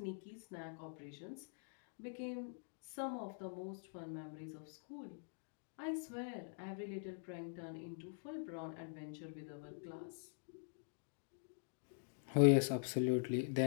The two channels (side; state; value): right; silent; digital silence